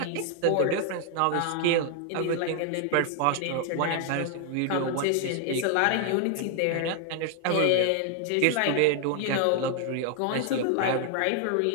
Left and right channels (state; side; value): different; both; correlation 0.00